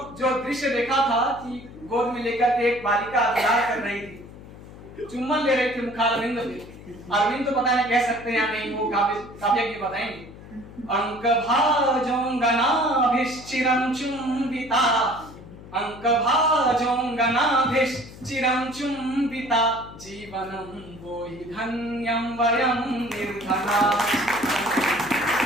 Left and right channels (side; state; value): left; noise; hum, 17 dB below the sound